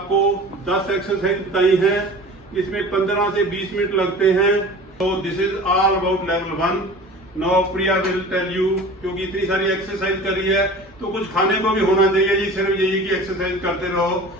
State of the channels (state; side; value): normal; both; correlation 0.40